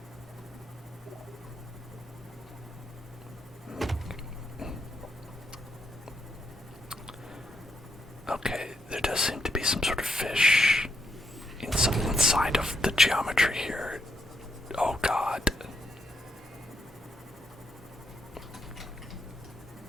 Okay, there does seem to be some sort of fish inside of the geometry here. Oh god.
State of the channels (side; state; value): both; normal; correlation 0.79